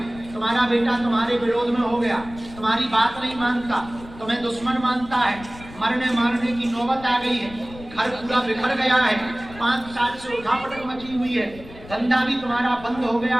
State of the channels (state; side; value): noise; left; rumble, 17 dB below the sound